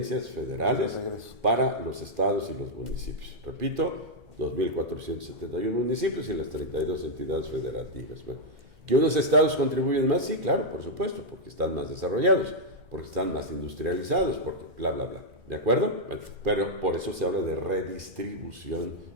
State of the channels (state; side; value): late; left; 2.5 ms